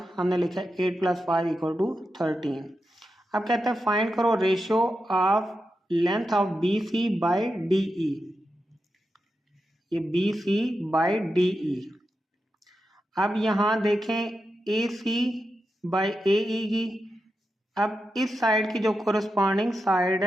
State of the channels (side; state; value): both; normal; correlation 0.88